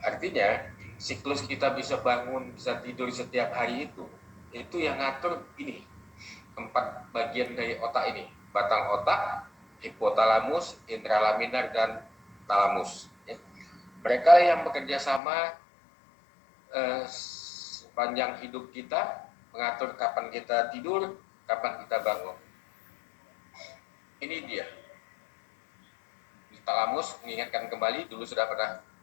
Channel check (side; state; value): right; drops out; at 15.2 s